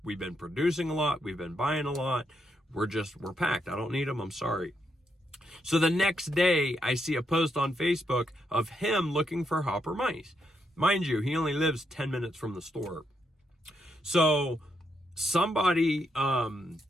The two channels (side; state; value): both; normal; correlation 0.79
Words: We've been producing a lot. We've been buying a lot. We're packed. I don't need them. I'm sorry. So the next day, I see a post on Facebook of him looking for hopper mice. Mind you, he only lives 10 minutes from the store. So somebody